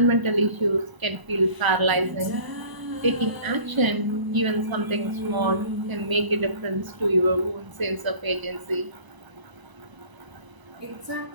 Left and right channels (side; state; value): left; late; 1.0 ms